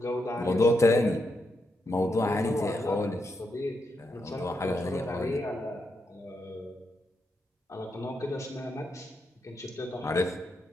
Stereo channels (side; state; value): both; normal; correlation 0.83